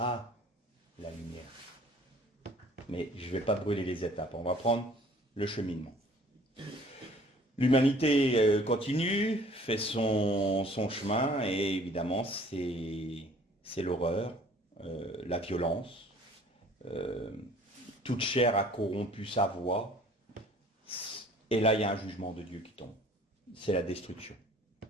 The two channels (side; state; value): both; normal; correlation 0.53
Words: la lumière. Mais je ne vais pas brûler les étapes, on va prendre le cheminement. L'humanité continue, fait son chemin, et évidemment c'est l'horreur, la violence. Toute chair a corrompu sa voix. Et là, il y a un jugement de Dieu qui tombe. C'est la destruction.